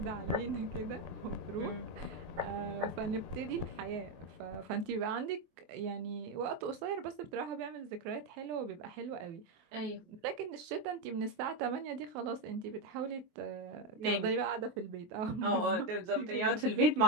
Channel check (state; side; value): late; left; 24 ms